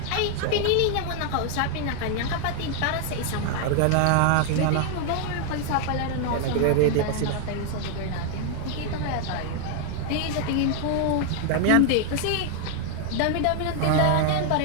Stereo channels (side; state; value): both; different; correlation 0.00